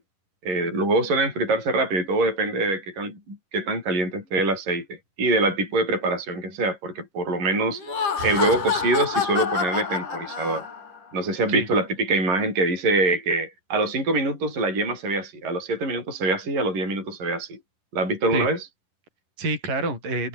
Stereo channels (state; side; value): late; left; 11 ms